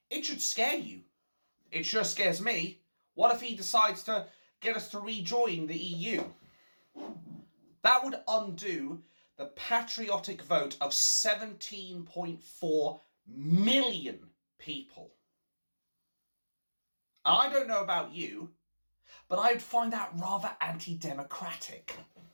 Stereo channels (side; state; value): both; inverted; correlation -1.00